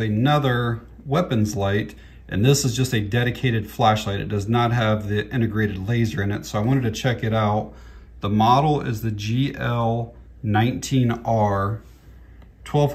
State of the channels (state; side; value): identical; both; correlation 1.00